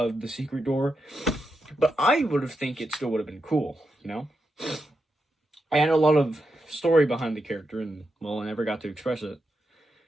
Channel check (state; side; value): normal; both; correlation 0.86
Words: the secret door, but I would have think it still would have been cool, I had a lot of story behind the character, and well, I never got to express it.